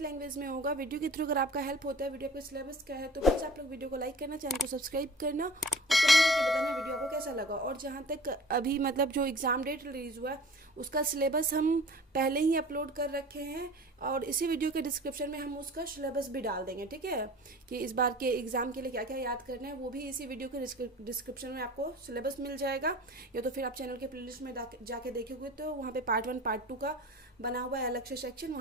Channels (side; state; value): both; normal; correlation 0.43